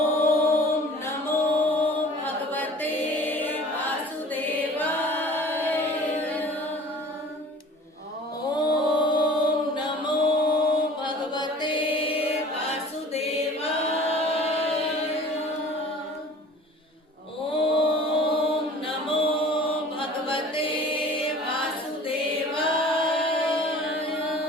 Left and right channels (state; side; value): normal; both; correlation 0.45